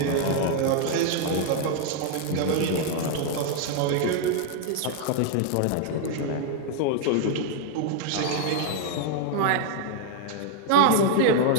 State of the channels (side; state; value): both; different; correlation 0.00